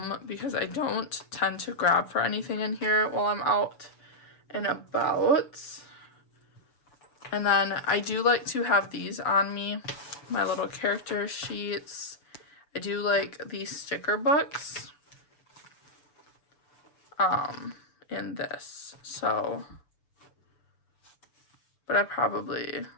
because I don't tend to grab for anything in here while I'm out and about. And then I do like to have these on me, my little character sheets. I do like these sticker books in this. So, but I probably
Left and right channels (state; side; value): late; right; 6.9 ms